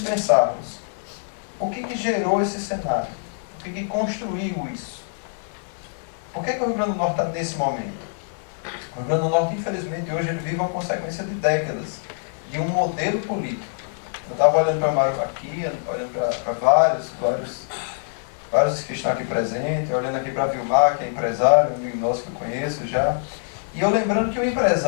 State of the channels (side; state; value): right; silent; digital silence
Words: pensarmos o que gerou esse cenário. O que construiu isso? Por que o Rio Grande do Norte está nesse momento? O Rio Grande do Norte, infelizmente, hoje ele vive uma consequência de décadas de um modelo político. Eu estava olhando para o Mário aqui, olhando para vários que estão aqui presentes, olhando aqui para Vilmar, que é empresário, um amigo nosso que eu conheço já. E eu lembrando que o